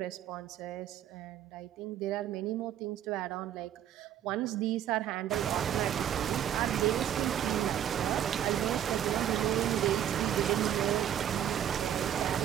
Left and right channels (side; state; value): left; quieter; 10.4 dB